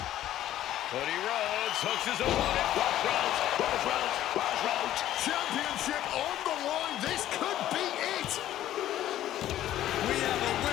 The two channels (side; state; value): right; quieter; 12.9 dB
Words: Cody Rhodes hooks his opponent. Rhodes. Championship on the line. This could be it. We have a